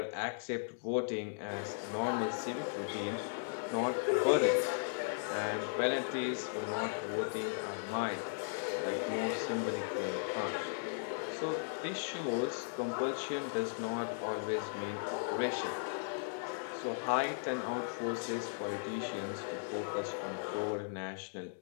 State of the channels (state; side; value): silent; right; digital silence